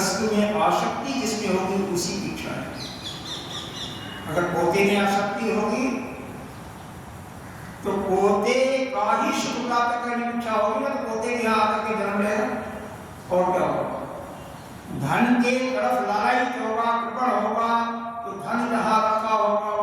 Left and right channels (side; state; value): both; identical; correlation 1.00